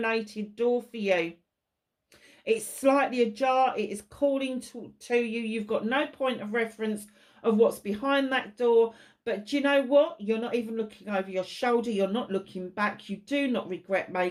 door for you. It's slightly ajar. It is calling to you. You've got no point of reference of what's behind that door. But do you know what? You're not even looking over your shoulder. You're not looking back. You do not regret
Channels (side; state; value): both; identical; correlation 1.00